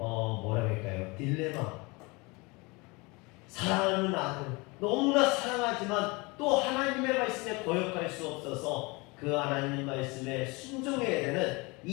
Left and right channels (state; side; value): quieter; right; 26.2 dB